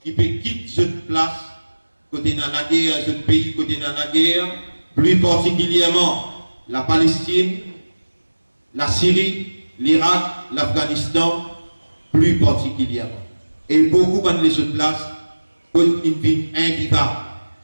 qui peut quitter cette place, côté dans la guerre, ce pays côté dans la guerre, plus particulièrement la Palestine, la Syrie, l'Irak, l'Afghanistan, plus particulièrement. Et beaucoup de les autres places, une vie invivable.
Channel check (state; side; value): inverted; both; correlation -1.00